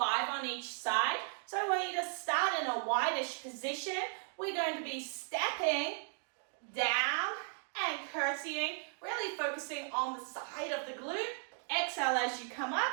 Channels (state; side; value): silent; left; 54 dB below the other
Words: on each side. So I want you to start in a wide-ish position. We're going to be stepping down and curtsying, really focusing on the side of the glute. Exhale as you come up,